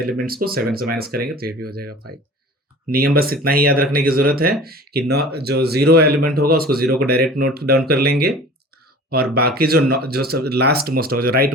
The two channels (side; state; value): both; normal; correlation 0.42